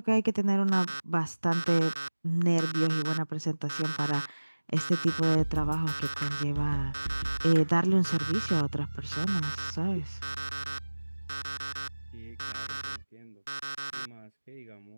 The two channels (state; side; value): inverted; both; correlation -1.00